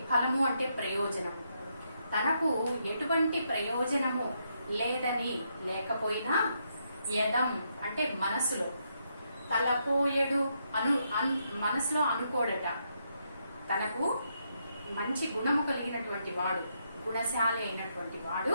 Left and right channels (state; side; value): inverted; both; correlation -0.78